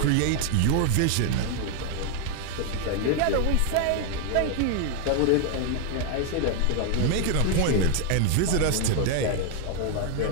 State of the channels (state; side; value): different; both; correlation 0.00